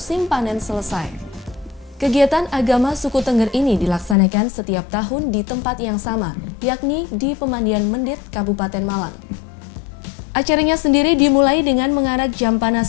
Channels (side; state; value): right; drops out; at 4.2 s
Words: panen selesai. Kegiatan agama suku Tengger ini dilaksanakan setiap tahun di tempat yang sama, yakni di Pemandian Mendit, Kabupaten Malang. Acaranya sendiri dimulai dengan mengarak jampana